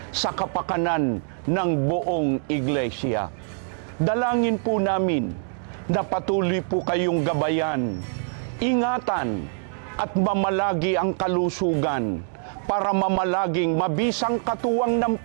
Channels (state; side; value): silent; left; digital silence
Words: sa kapakanan ng buong iglesia. Dalangin po namin na patuloy po kayong gabayan, ingatan at mamalagi ang kalusugan para mamalaging mabisang katuwang ng